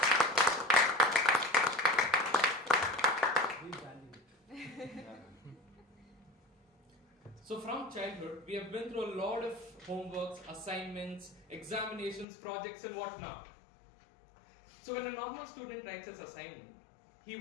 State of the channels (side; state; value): right; drops out; at 12.2 s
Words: So from childhood, we have been through a lot of homeworks, assignments, examinations, projects and whatnot. So when a normal student writes his assignment, he